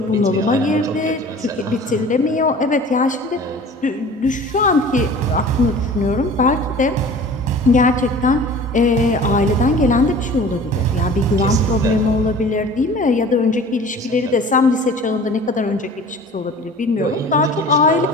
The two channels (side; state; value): both; normal; correlation 0.43